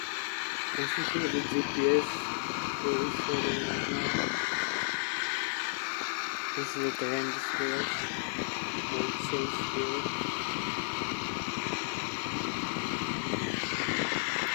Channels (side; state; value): right; silent; digital silence